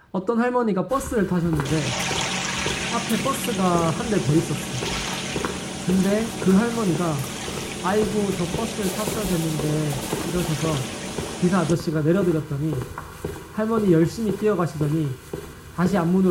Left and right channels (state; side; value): identical; both; correlation 1.00